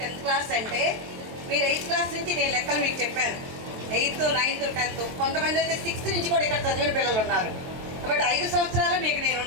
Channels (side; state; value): left; late; 23 ms